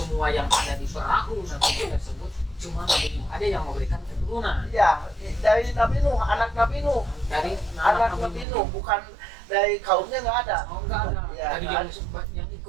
yang ada di perahu Nabi Nuh tersebut cuma Nabi Nuh ada yang memberikan keturunan. Ya, dari Nabi Nuh, anak Nabi Nuh. Dari anak Nabi Nuh, bukan dari kaumnya, nggak ada. Oh, nggak ada. Ya, dari yang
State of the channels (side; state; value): left; drops out; at 8.5 s